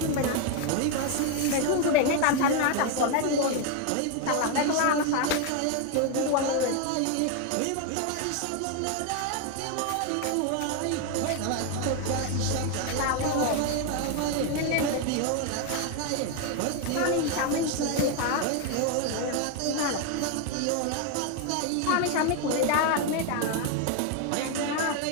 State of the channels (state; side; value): different; both; correlation 0.01